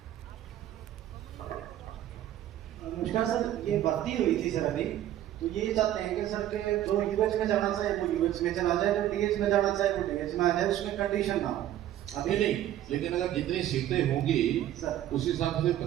नमस्कार सर, ये भर्ती हुई थी सर अभी, तो ये चाहते हैं कि सर के जो यूएच में जाना चाहे वो यूएच में चला जाए, जो डीएच में जाना चाहे वो डीएच में आ जाए, उसमें कंडीशन ना हो। अभी नहीं, लेकिन अगर जितनी सीटें होंगी सर उस हिसाब से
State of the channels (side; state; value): left; quieter; 12.4 dB